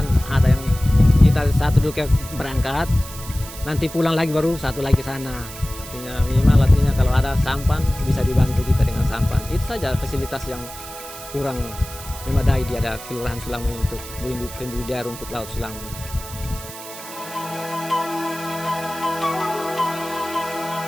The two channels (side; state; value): right; noise; hiss, 13 dB below the sound